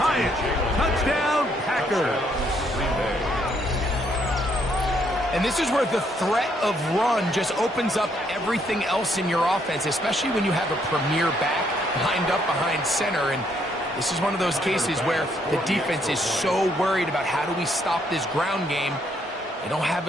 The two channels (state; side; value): normal; both; correlation 0.71